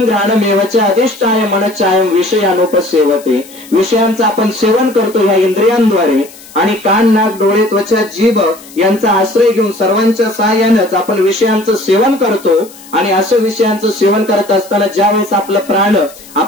घ्राणमेवच अधिष्ठाय मनश्चायम विषयानुपसेवते. विषयांचं आपण सेवन करतो ह्या इंद्रियांद्वारे, आणि कान, नाक, डोळे, त्वचा, जीभ यांचा आश्रय घेऊन सर्वांच्या सहाय्यानेच आपण विषयांचं सेवन करतो. आणि असं विषयांचं सेवन करत असताना ज्या वेळेस आपलं प्राण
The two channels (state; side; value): noise; left; hiss, 21 dB below the sound